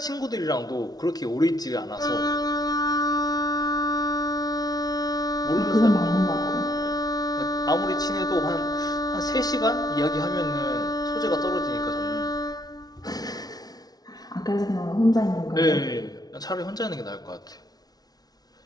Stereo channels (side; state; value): right; late; 0.19 ms